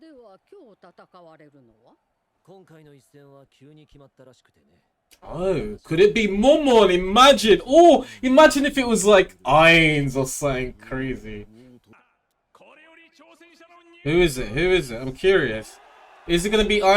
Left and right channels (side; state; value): both; identical; correlation 1.00